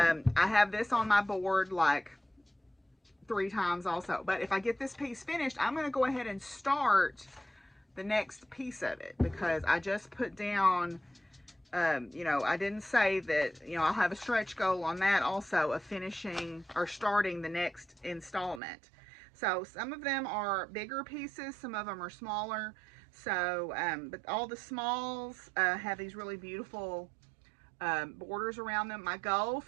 have this on my board like 3 times also. But if I get this piece finished, I'm going to go ahead and start the next piece of it. Because I just put down, you know, I didn't say that, you know, I'll have a stretch goal on that also of finishing or starting the next installment. So some of them are bigger pieces, some of them are smaller. So, but all the smalls have these really beautiful borders around them. My goal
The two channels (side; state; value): left; drops out; at 18.6 s